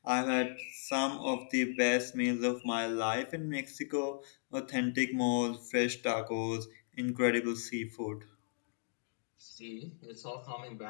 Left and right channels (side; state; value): right; silent; digital silence